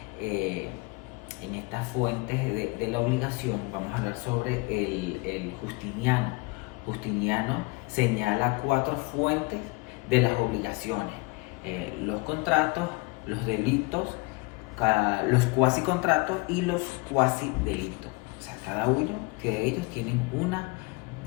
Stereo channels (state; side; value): quieter; right; 26.7 dB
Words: en estas fuentes de la obligación, vamos a hablar sobre el Justiniano. Justiniano señala 4 fuentes de las obligaciones: los contratos, los delitos, los cuasi contratos y los cuasi delitos. O sea, cada uno de ellos tienen una